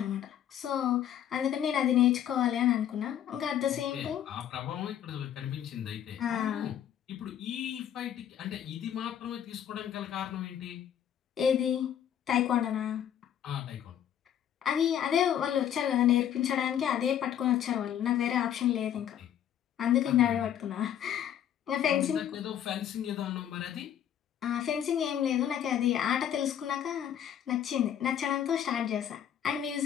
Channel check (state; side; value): quieter; right; 10.0 dB